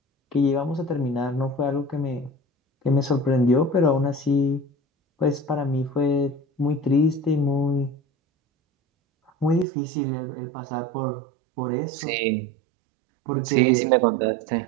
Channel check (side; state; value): left; drops out; at 9.7 s